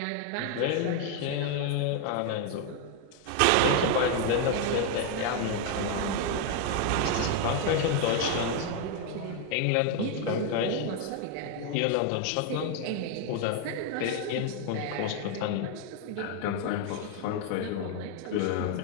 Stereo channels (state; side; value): different; both; correlation 0.01